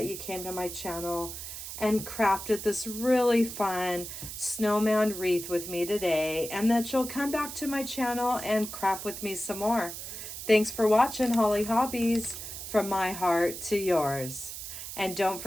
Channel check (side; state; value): right; noise; hiss, 9 dB below the sound